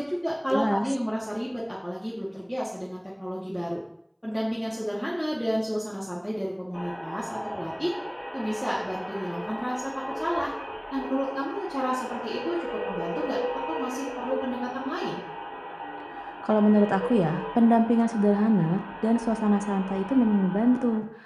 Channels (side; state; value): both; identical; correlation 1.00